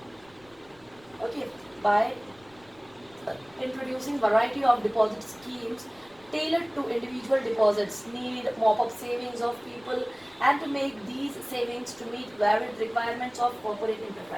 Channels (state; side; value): noise; left; rumble, 28 dB below the sound